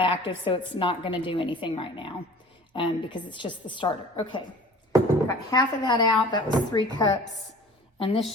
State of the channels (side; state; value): both; normal; correlation 0.45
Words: active, so it's not going to do anything right now because it's just the starter. Okay, got half of that out. That was 3 cups, and this